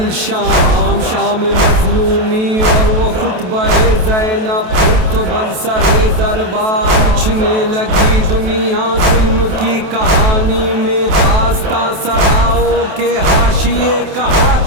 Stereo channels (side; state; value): left; late; 28 ms